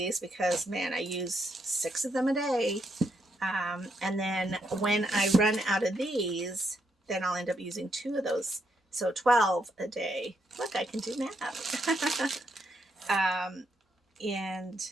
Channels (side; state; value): both; normal; correlation 0.78